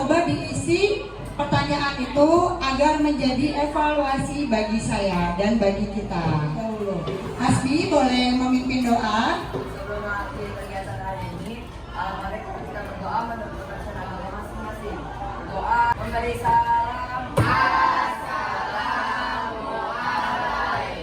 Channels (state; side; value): identical; both; correlation 1.00